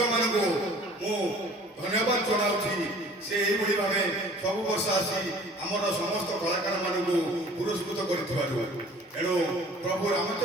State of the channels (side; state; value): both; normal; correlation 0.50